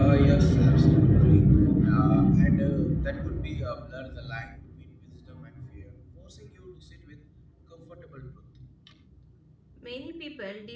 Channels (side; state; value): both; identical; correlation 1.00